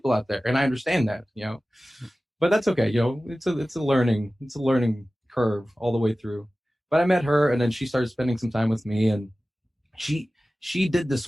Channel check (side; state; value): both; normal; correlation 0.96